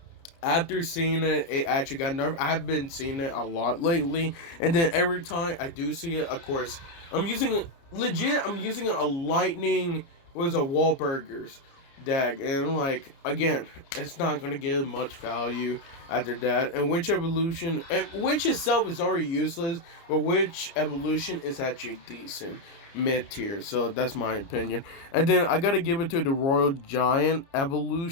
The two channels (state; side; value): late; right; 29 ms